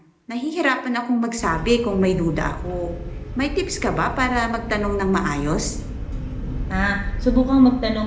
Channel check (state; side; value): identical; both; correlation 1.00